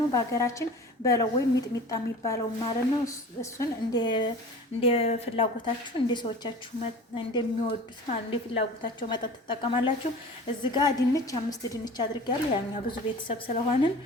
በሀገራችን በለው ወይም ሚጥሚጣ የሚባለው ማለት ነው። እሱን እንደ ፍላጎታችሁ እንደ ሰዎቻችሁ እንደሚወዱት ማለት እንደ ፍላጎታቸው መጠጥ ትጠቀማላችሁ። እዚህ ጋር ድንች 5 ድንች አድርጌያለሁ። ያኛ ብዙ ቤተሰብ ስለሆንን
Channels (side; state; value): both; normal; correlation 0.40